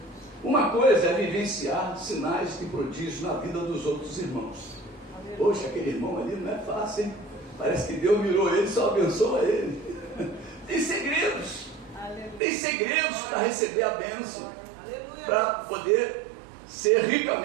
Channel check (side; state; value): left; drops out; at 12.4 s